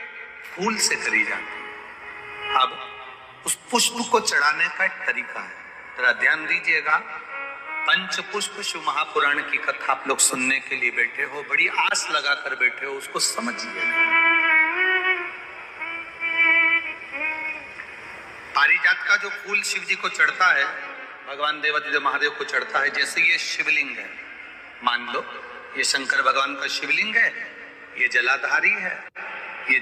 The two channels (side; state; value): both; identical; correlation 1.00